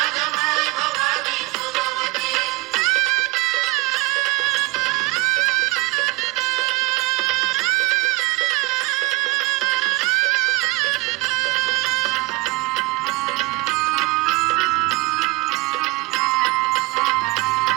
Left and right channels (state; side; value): quieter; left; 23.2 dB